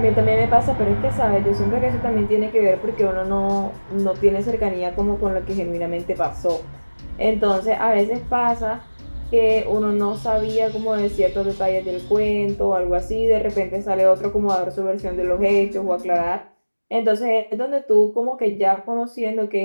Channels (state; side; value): inverted; both; correlation -1.00